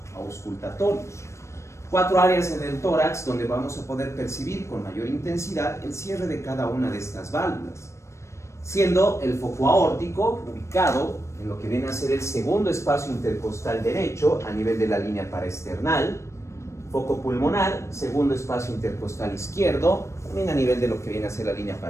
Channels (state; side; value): late; right; 0.14 ms